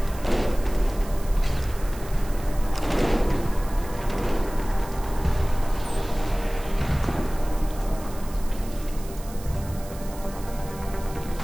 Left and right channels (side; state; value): right; noise; hiss, 18 dB below the sound